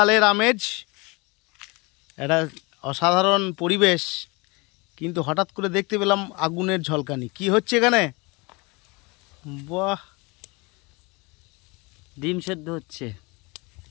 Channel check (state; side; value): quieter; right; 26.9 dB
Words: আমেজ, একটা অসাধারণ পরিবেশ, কিন্তু হঠাৎ করে দেখতে পেলাম আগুনের ঝলকানি। কি হচ্ছে এখানে? বাহ, ডিম সেদ্ধ হচ্ছে।